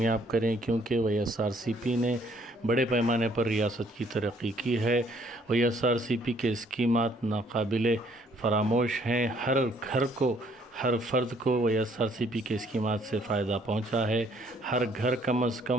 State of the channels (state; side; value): normal; both; correlation 0.64